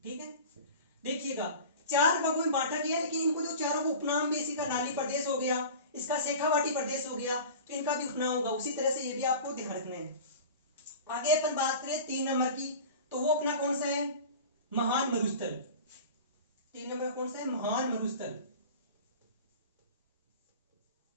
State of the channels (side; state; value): both; inverted; correlation -0.36